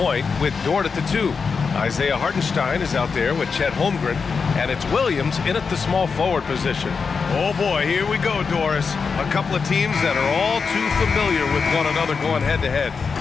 with Dort at the 2. Isaiah Hartenstein is out there with Chet Holmgren, and it's Williams in at the small forward position. Oh boy, here we go, Doris. A couple of teams that are all too familiar with one another going head-to-head.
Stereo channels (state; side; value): quieter; right; 5.3 dB